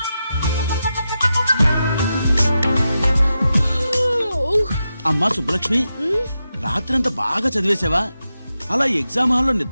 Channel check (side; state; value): both; inverted; correlation -0.89